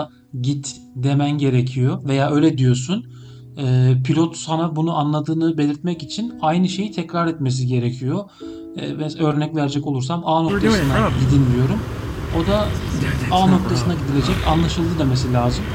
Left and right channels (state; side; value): identical; both; correlation 1.00